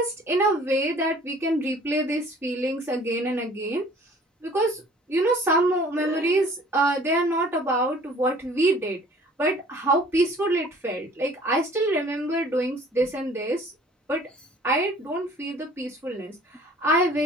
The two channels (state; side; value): normal; both; correlation 0.51